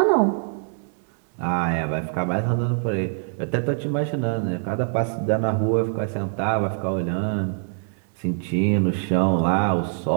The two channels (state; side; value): silent; left; 63 dB below the other